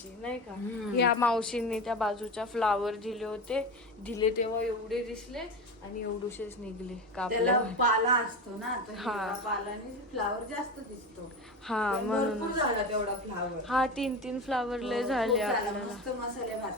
नाही का? ह्या मावशींनी त्या बाजूच्या फ्लावर दिले तेव्हा एवढे दिसले आणि एवढूशेच निघले त्याला कापले. पाला असतो ना, तर हा. हिरवा पालाने फ्लावर जास्त दिसतो. हा पण म्हणून भरपूर झाला तेवढा फ्लावर. हा 3 फ्लावर लय खूप झाले झाला. आपल्याला. मस्त मसाले भात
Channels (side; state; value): both; normal; correlation 0.24